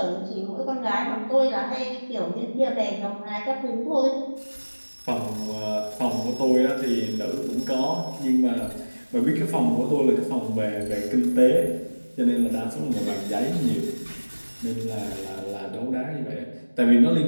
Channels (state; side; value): inverted; both; correlation -1.00